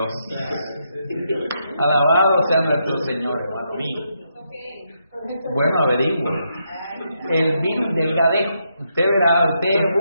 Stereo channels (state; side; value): inverted; both; correlation -0.80